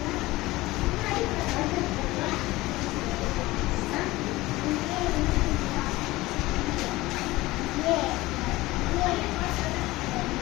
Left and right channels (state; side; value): quieter; right; 19.2 dB